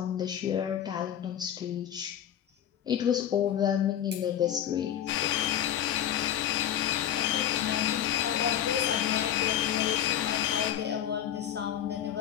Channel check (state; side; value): quieter; right; 10.4 dB